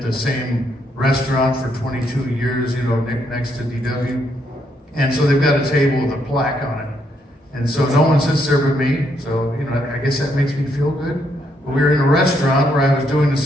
the same restaurant for 22 years, next to DW. And so they've got a table with a plaque on it. And so no one sits there but me. So, I guess that makes me feel good. But we were in a restaurant where I was doing the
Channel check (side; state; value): both; normal; correlation 0.75